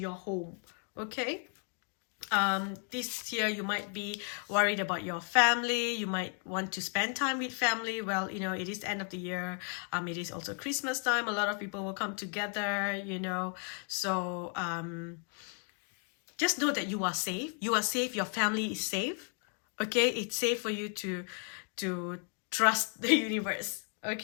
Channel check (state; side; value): quieter; right; 39.9 dB